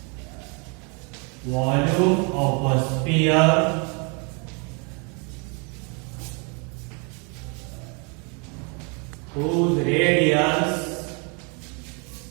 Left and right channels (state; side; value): quieter; left; 34.3 dB